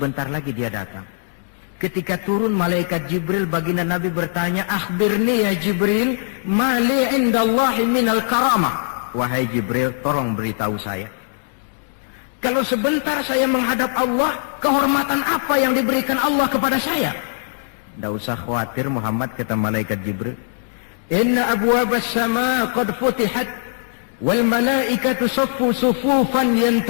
lagi dia datang. Ketika turun malaikat Jibril, baginda Nabi bertanya, akhbirni ya Jibril, mali indallahi minal karamah. Wahai Jibril, tolong beritahu saya. Kalau sebentar saya menghadap Allah, kehormatan apa yang diberikan Allah kepada saya? Tidak usah khawatir Muhammad, kata malaikat Jibril. Inna abwabas sama qad futihat, wal malaikatu saffu sufufan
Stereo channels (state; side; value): silent; right; 65 dB below the other